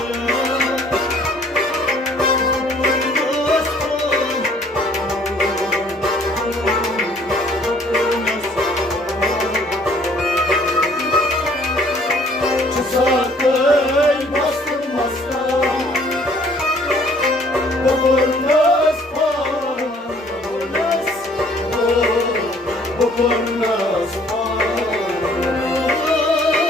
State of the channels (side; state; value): both; normal; correlation 0.58